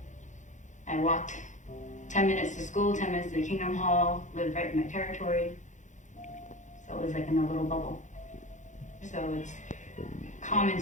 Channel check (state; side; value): late; right; 0.35 ms